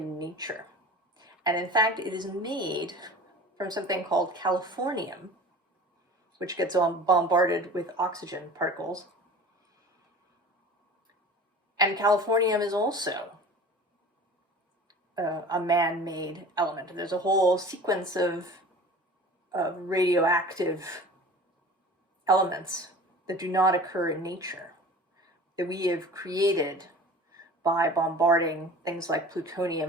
nature. And in fact, it is made from something called californium, which gets bombarded with oxygen particles. And californium is also a man-made element. There's a whole sequence of radioactive elements that do not occur in nature, that we have created by bombarding things like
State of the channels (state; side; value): normal; both; correlation 0.40